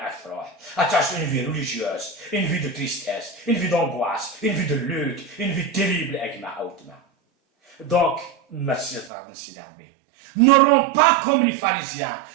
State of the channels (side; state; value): left; drops out; at 9.1 s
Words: attache une vie religieuse, une vie de tristesse, une vie d'angoisse, une vie de lutte, une vie terrible. Donc, merci n'auront pas comme les pharisiens.